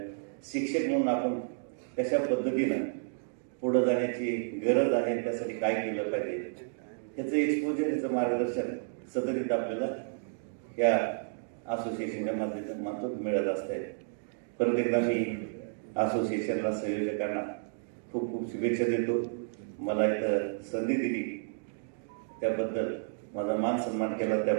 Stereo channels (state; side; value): silent; left; digital silence